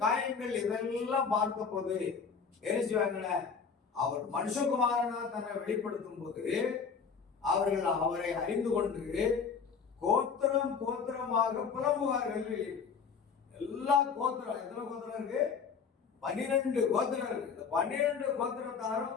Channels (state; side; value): quieter; right; 5.9 dB